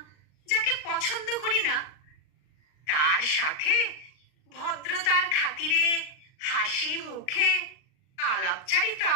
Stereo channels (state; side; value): late; right; 39 ms